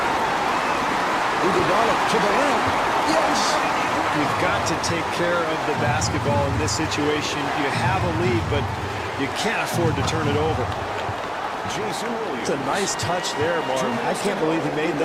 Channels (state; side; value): identical; both; correlation 1.00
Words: Iguodala to the rim. Yes. You've got to take care of the basketball in this situation. You have a lead, but you can't afford to turn it over. Jason Williams. It's a nice touch there, Mark. I can't believe he made